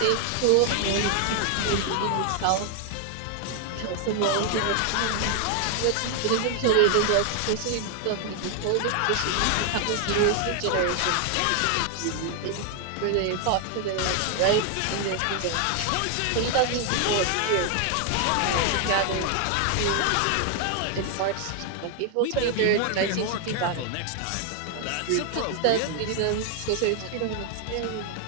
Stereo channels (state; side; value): different; both; correlation 0.00